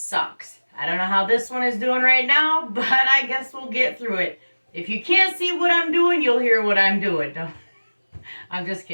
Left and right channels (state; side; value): inverted; both; correlation -1.00